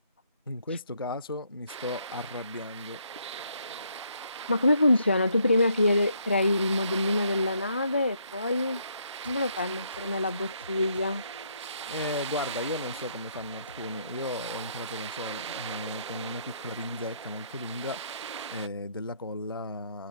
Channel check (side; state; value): both; inverted; correlation -0.71